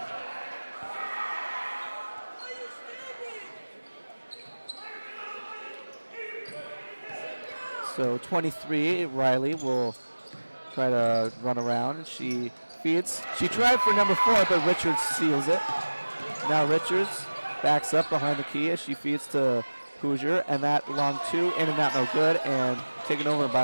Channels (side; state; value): both; inverted; correlation -1.00